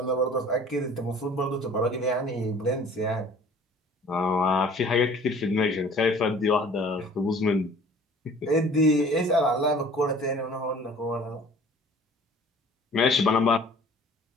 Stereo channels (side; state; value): both; normal; correlation 0.49